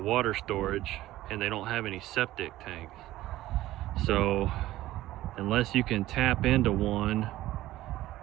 storage, and they don't have any septic tanks. So unless you can tap into one,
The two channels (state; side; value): quieter; left; 15.5 dB